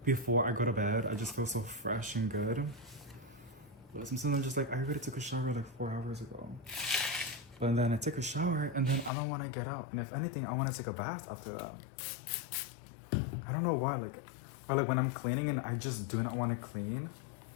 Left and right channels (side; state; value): right; drops out; at 9.1 s